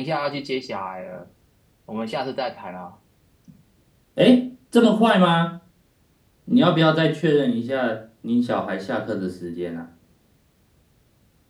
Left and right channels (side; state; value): both; identical; correlation 1.00